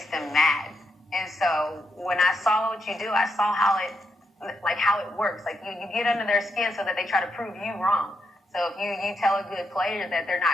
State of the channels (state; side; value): normal; both; correlation 0.81